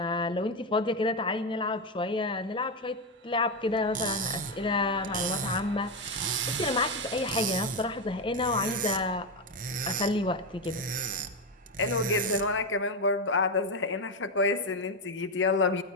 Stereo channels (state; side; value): normal; both; correlation 0.10